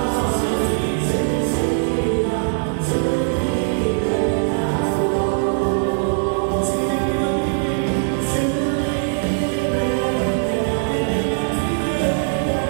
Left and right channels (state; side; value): silent; left; 59 dB below the other